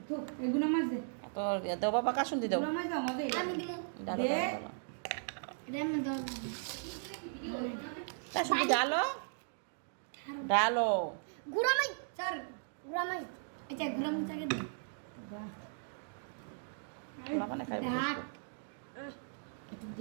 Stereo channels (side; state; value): left; silent; digital silence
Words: তোর দেও বাবা কাশুন দি দেও কাশুন দি ডালো ডালো গুড়ামাই স্যার গুড়ামাই আচ্ছা গুড়ামাই চাকে দে মানে খাইব একটু